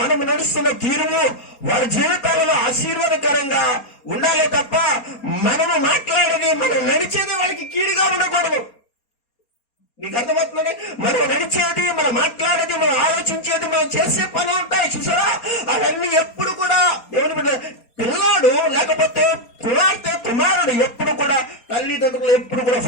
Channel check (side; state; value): right; late; 4.3 ms